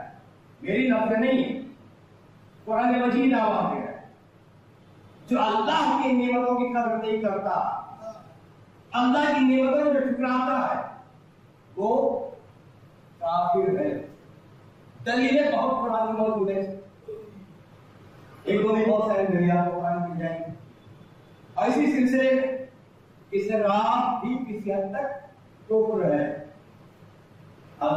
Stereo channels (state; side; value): identical; both; correlation 1.00